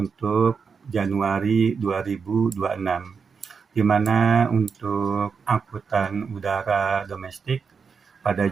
Januari 2026, di mana untuk angkutan udara domestik pada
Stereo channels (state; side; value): quieter; left; 5.7 dB